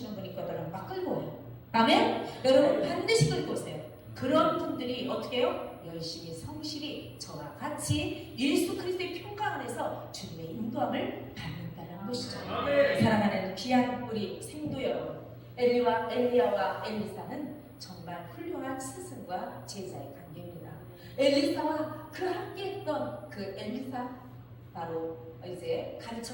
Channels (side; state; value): both; identical; correlation 1.00